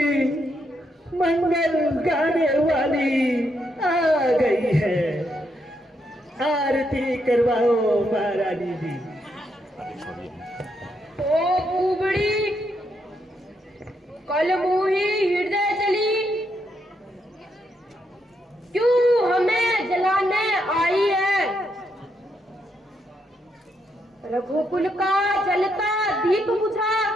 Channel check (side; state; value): both; normal; correlation 0.78